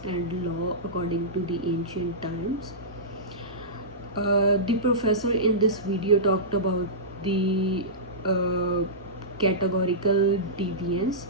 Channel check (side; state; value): both; normal; correlation -0.18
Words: and law according to the ancient times. The professor in this video talked about the uh, categorical deviance